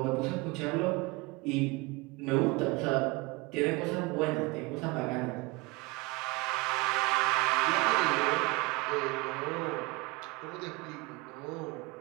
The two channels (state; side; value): quieter; left; 24.2 dB